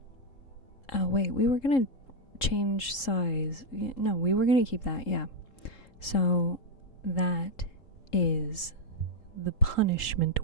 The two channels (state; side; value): late; right; 3.7 ms